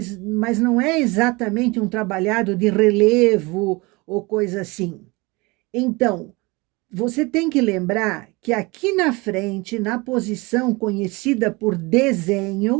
não é exatamente um trabalhado de relevo ou coisa assim. Então, você tem que lembrar que aqui na frente, na posição conhecida por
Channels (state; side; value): quieter; left; 24.9 dB